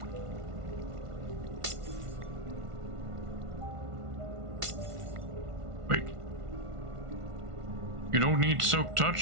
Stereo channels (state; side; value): late; left; 1.5 ms